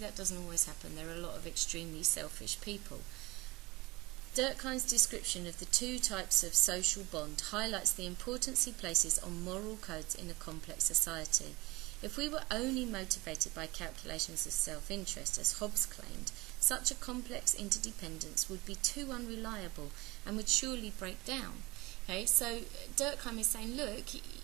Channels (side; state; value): left; quieter; 22.1 dB